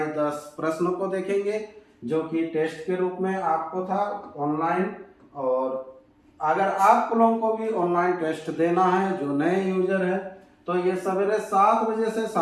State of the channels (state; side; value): identical; both; correlation 1.00